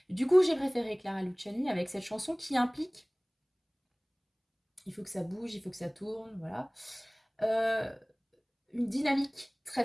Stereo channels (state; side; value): identical; both; correlation 1.00